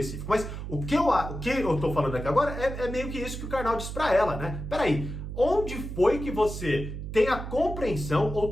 mas o que eu tô falando aqui agora é meio que isso que o Karnal diz pra ela, né? Peraí, onde foi que você tem a compreensão ou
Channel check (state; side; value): noise; right; hum, 7 dB below the sound